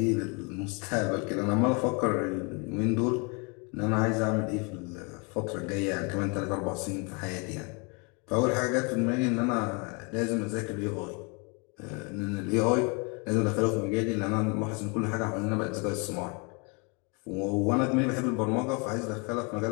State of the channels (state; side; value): quieter; right; 32.6 dB